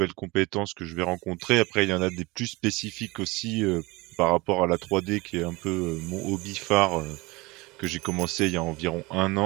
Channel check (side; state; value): left; quieter; 23.5 dB